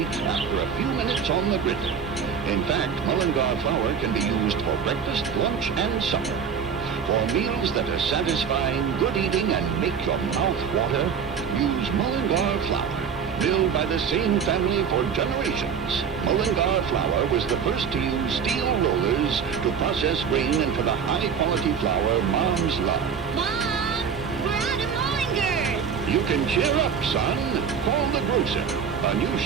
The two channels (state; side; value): quieter; left; 6.9 dB